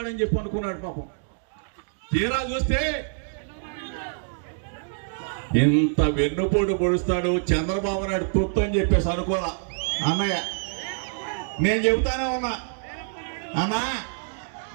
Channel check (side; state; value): left; silent; digital silence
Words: చెప్పి అనుకున్నాడు. పాపం తీరా చూస్తే ఇంత వెన్నుపోటు పొడుస్తాడు చంద్రబాబు నాయుడు తొత్తు అని చెప్పేసి అనుకోరా అన్నయ్య. నేను చెబుతానే ఉన్నా అన్నా,